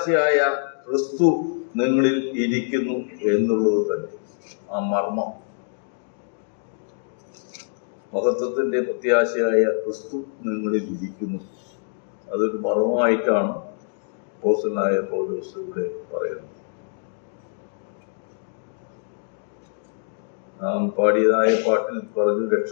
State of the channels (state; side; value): silent; right; digital silence